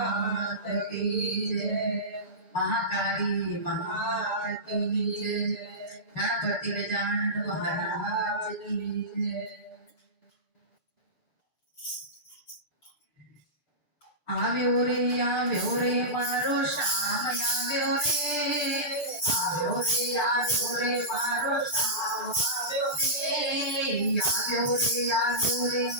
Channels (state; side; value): late; right; 6.9 ms